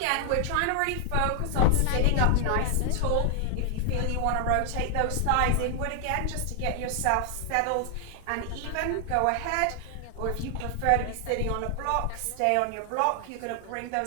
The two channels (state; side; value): different; both; correlation 0.00